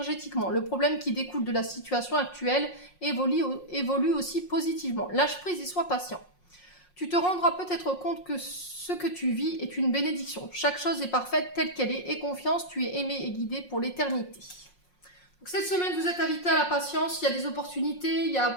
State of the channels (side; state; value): right; late; 5.5 ms